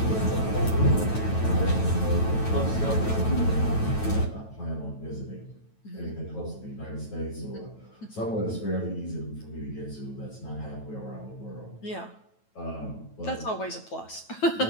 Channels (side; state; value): right; late; 9.2 ms